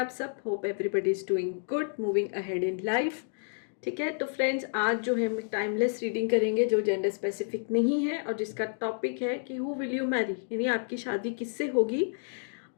सब? Hope everybody is doing good, moving ahead in life. ठीक है, तो फ्रेंड्स आज जो है हम टाइमलेस रीडिंग करेंगे जो जेंडर स्पेसिफिक नहीं है और जिसका टॉपिक है कि हु विल यू मैरी, यानी आपकी शादी किससे होगी।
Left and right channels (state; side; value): silent; right; 58 dB below the other